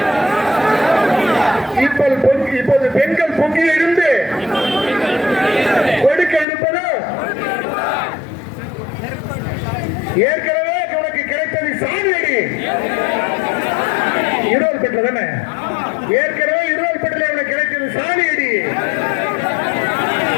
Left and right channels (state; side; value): drops out; right; at 6.5 s